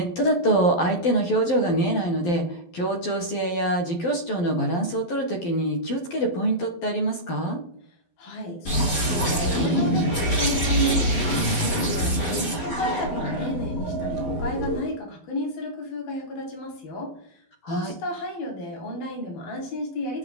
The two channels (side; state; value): right; late; 11 ms